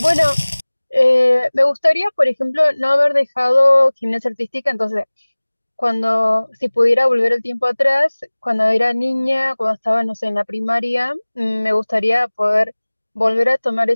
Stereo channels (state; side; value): inverted; both; correlation -1.00